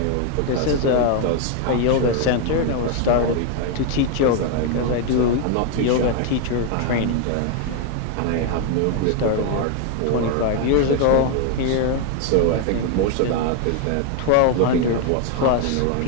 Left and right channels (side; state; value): both; different; correlation 0.01